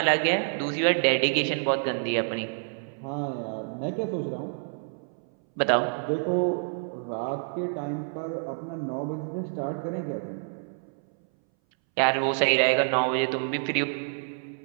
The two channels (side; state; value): left; silent; 60 dB below the other